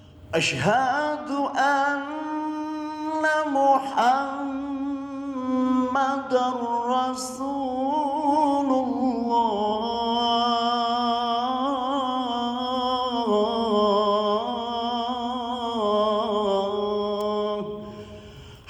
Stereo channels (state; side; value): identical; both; correlation 1.00